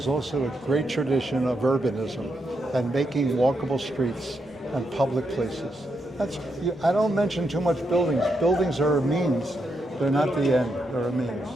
also a great tradition of urbanism and making walkable streets and public places. I don't mention too much buildings. Buildings are a means. They're not the end. They're a means.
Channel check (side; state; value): right; noise; rumble, 30 dB below the sound